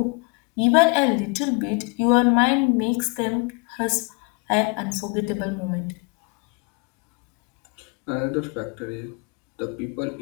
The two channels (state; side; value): quieter; right; 32.3 dB